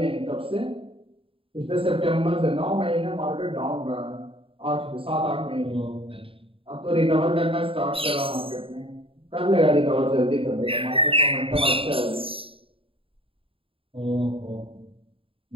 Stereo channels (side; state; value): left; late; 0.27 ms